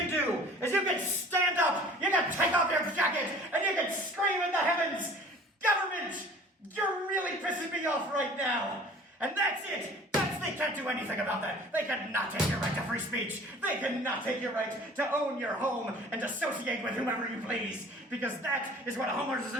do is you can stand up, you can take off your jacket, and you can scream in the heavens, "Government, you're really pissing me off right now!" And that's it! They can't do anything about that. They cannot take your right to free speech. They cannot take your right to own your home and associate with whomever you please. Because that is what a homeowners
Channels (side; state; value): both; normal; correlation 0.47